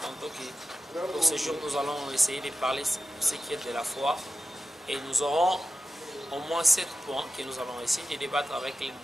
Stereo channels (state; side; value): normal; both; correlation 0.93